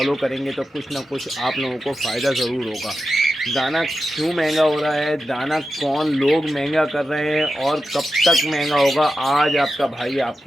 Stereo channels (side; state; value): both; normal; correlation 0.91